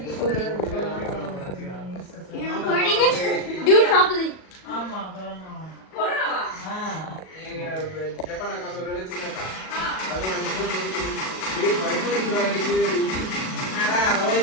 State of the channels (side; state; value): right; late; 37 ms